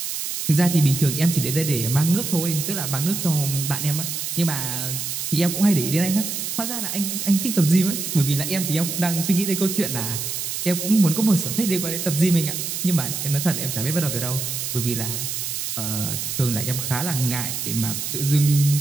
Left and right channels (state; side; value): noise; right; hiss, 4 dB below the sound